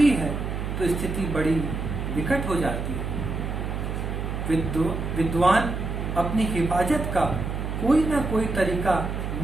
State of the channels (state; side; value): noise; right; hum, 4 dB below the sound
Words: है तो स्थिति बड़ी विकट हो जाती है। विद्वान अपनी हिफाजत का कोई ना कोई तरीका